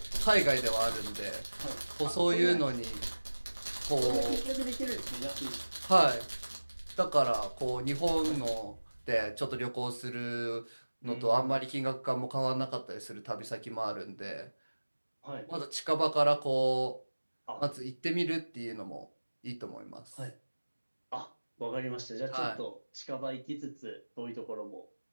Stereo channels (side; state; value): both; inverted; correlation -1.00